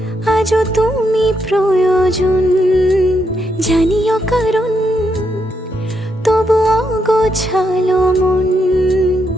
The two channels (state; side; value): normal; both; correlation 0.80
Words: আজও তুমি প্রয়োজন, জানিও কারণ তবু অগোছালো মন।